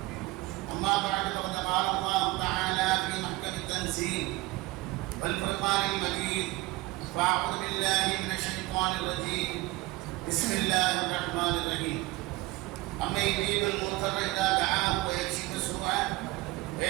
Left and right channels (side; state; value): left; quieter; 20.2 dB